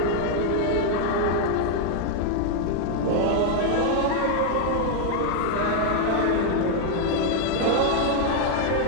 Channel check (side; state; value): both; different; correlation 0.00